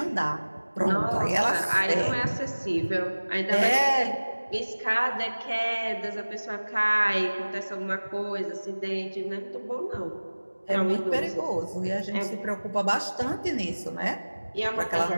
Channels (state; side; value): inverted; both; correlation -1.00